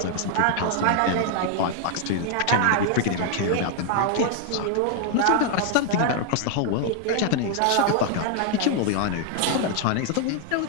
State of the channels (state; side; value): different; both; correlation 0.00